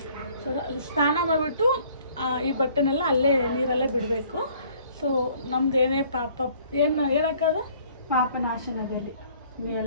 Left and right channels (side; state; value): both; inverted; correlation -0.58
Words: ಸೊ ಸ್ನಾನ ಮಾಡಿಬಿಟ್ಟು ಈ ಬಟ್ಟೆನೆಲ್ಲ ಅಲ್ಲೇ ನೀರಲ್ಲೇ ಬಿಡಬೇಕು. ಸೊ ನಮ್ದೇನೇ ಪಾಪ ಏನಕ್ಕಾದು ಪಾಪನಾಶನದಲ್ಲಿ